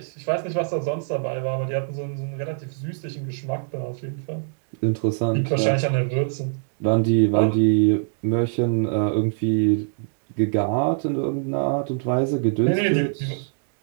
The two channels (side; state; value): left; silent; digital silence